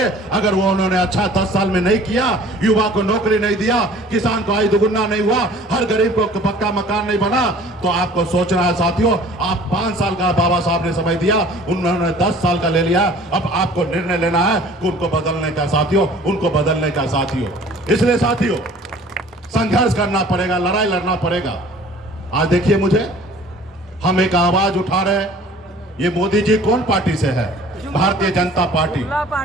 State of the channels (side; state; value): both; normal; correlation 0.50